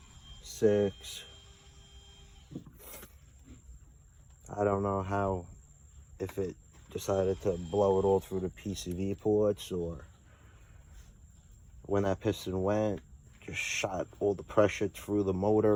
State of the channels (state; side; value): identical; both; correlation 1.00